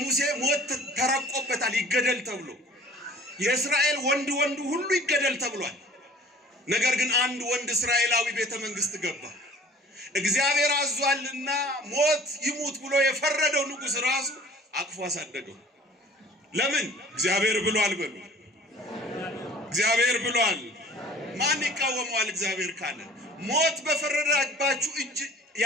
ሞት ተረቆበታል ይገደል ተብሎ የእስራኤል ወንድ ሁሉ ይገደል ተብሏል ነገር ግን አንድ ወንድ እስራኤላዊ ቤተ መንግስት ገባ እግዚአብሔር አዟልና ሞት ይሙት ብሎ የፈረደው ንጉስ ራሱ አቅፎ አሳደገው ለምን እግዚአብሔር ብሏል በሉ እግዚአብሔር ብሏል ማን ይቃወማል እግዚአብሔር ካለ ሞት በፈረደባችሁ እጅ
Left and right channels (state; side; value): normal; both; correlation 0.48